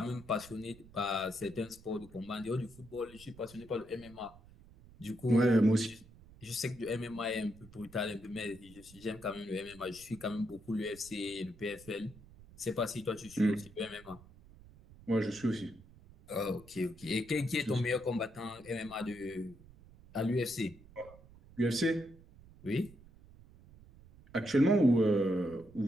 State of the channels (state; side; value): noise; right; rumble, 22 dB below the sound